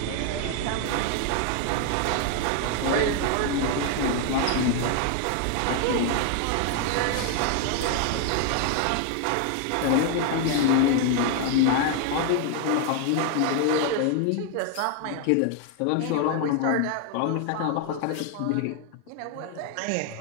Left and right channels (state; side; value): different; both; correlation 0.00